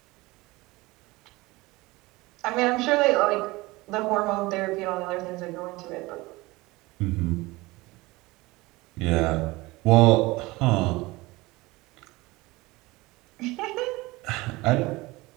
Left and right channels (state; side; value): quieter; left; 21.5 dB